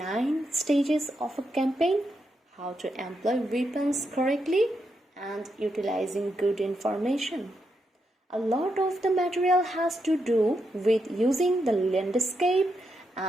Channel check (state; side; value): normal; both; correlation 0.83